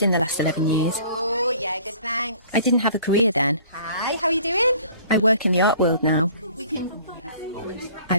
in the last 11 years. Oh, yeah, good, thanks. I didn't have a career then. Hi, how are you doing? I work in the art world now.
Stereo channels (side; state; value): both; inverted; correlation -0.51